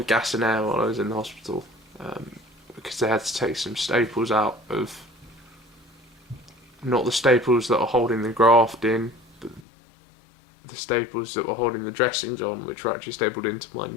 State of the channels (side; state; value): right; drops out; at 9.7 s